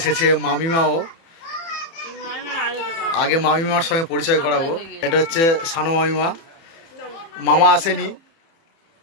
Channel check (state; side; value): late; right; 30 ms